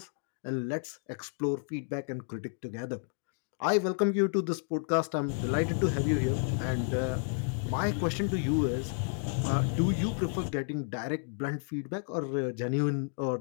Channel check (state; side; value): silent; right; 57 dB below the other